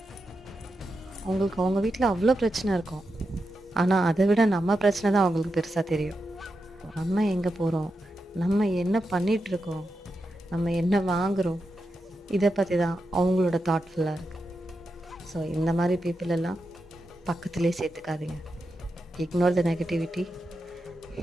அவங்களுக்கு அவங்க வீட்டில் அவ்வளோ பிரச்சனை இருக்கும், ஆனால் அதை விட நம்ம பிரச்சனை தான் அவங்களுக்கு பெருசாக தெரியும். நம்ம எங்கே போகிறோம், நம்ம என்ன பண்ணிகிட்ருக்கோம், நம்ம என்ன வாங்குகிறோம், இதை பற்றி தான் அவங்களோட தாட்ஃபுல்லாக இருக்குது. ஸோ இந்த மாதிரி பீப்புள் எல்லாம் பக்கத்துலேயே சேர்த்துக்காதீங்க. Ignore the negativity,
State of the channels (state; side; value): normal; both; correlation 0.88